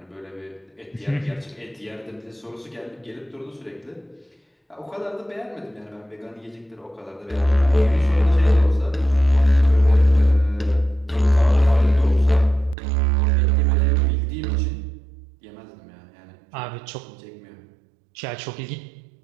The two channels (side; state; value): left; drops out; at 12.8 s